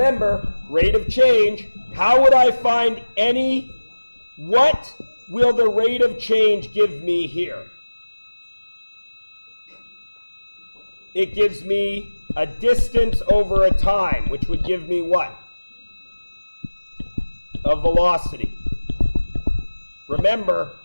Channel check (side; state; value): both; inverted; correlation -1.00